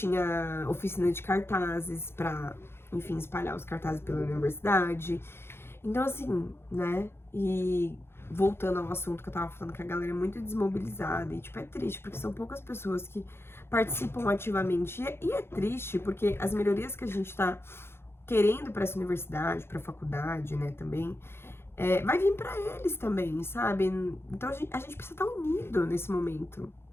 oficina de cartazes pra, enfim, espalhar os cartazes pela universidade. Então, assim, né? E voltando ao assunto que eu tava falando, que a galera é muito desmobilizada e, tipo, é triste, porque são poucas pessoas que participam ativamente. E é triste, porque as melhorias que a gente tá querendo pra essa universidade, pra faculdade, né, também, vai vir pra eles também, sabe? Então, a gente precisa estar unido nesse momento.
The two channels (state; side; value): late; right; 0.12 ms